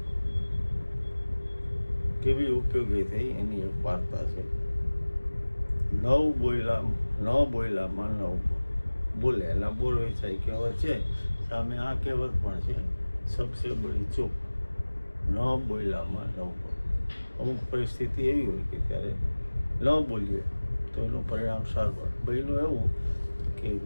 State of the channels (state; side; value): inverted; both; correlation -1.00